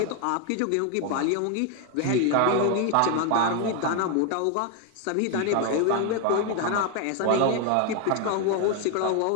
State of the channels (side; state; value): both; different; correlation 0.01